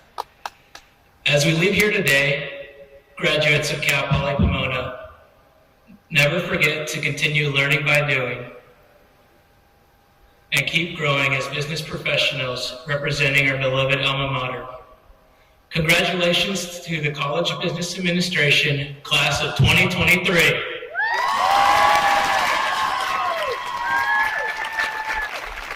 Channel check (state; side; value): identical; both; correlation 1.00